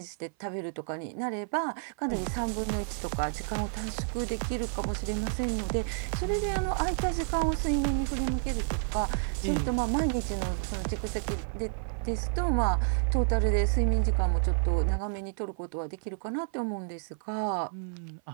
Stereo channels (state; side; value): silent; left; 55 dB below the other